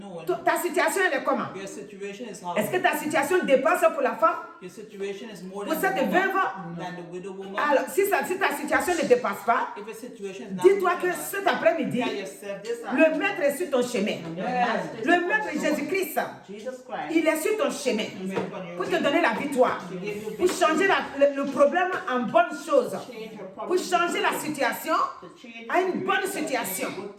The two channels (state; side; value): identical; both; correlation 1.00